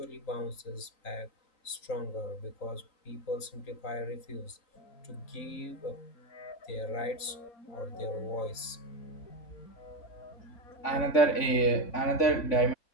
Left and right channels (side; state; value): right; late; 3.8 ms